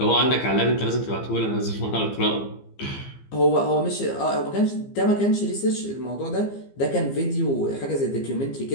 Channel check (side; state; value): right; late; 15 ms